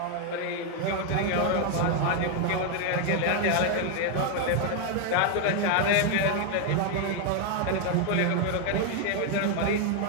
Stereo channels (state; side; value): different; both; correlation 0.01